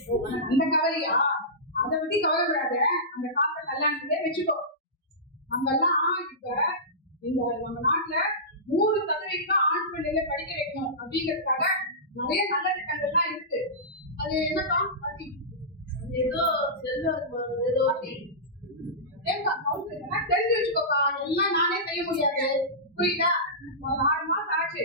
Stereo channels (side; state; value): both; normal; correlation -0.17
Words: அந்த கவலையா? அதை பத்தி கவலைப்படாத. அந்த காசை கல்யாணத்திலே வச்சுக்கோ. நம்மெல்லாம் இப்ப இந்த நம்ம நாட்டுல 100% ஆண் பிள்ளைகளை படிக்க வைக்கணும் அப்படிங்கிறதுக்காக நிறைய நல்ல திட்டங்கள்லாம் இருக்கு. அது என்னக்கா? ஏதோ ஏதோ தெரிஞ்சு வச்சுக்கோக்கா. எல்லாம் நானே செய்ய முடியாது, புரியுதா? ஒரு 6 மாசம் ஆச்சு.